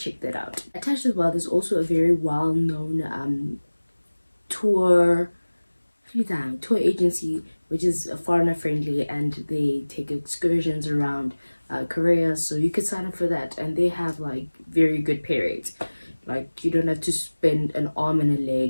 that out. Attached as well, there's also a very well-known tour tour agency, which is foreigner friendly, and they take excursions around Korea. So you could sign up for that, and they have like very good pay rates. Like you don't have to spend an arm and a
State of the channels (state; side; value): inverted; both; correlation -1.00